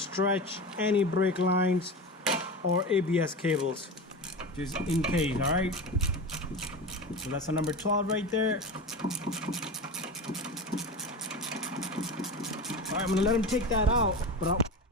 any brake lines or ABS cables, just in case. All right, so that's a number 12 right there. All right, I'm gonna let him take that out, but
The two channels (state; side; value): normal; both; correlation 0.27